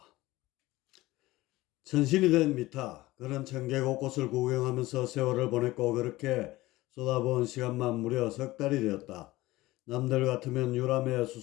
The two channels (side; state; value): right; quieter; 18.5 dB